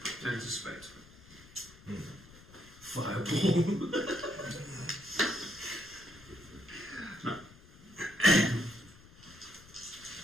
anticipate. Fireball. No.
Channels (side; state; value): left; noise; rumble, 22 dB below the sound